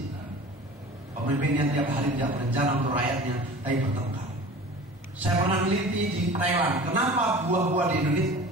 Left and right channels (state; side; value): normal; both; correlation 0.40